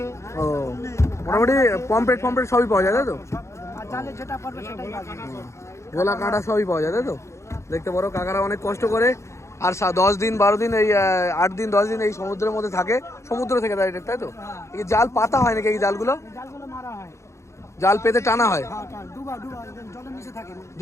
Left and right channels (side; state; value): right; late; 0.14 ms